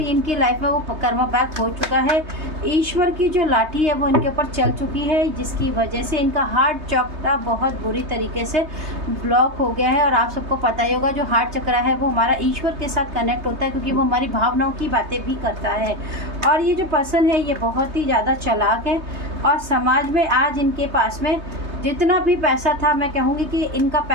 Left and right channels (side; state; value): left; late; 3.2 ms